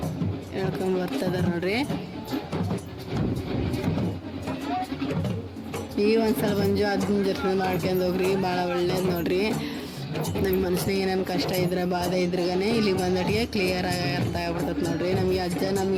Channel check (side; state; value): both; identical; correlation 1.00